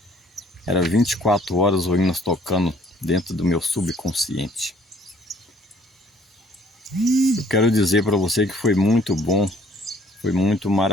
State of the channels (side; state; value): both; normal; correlation 0.59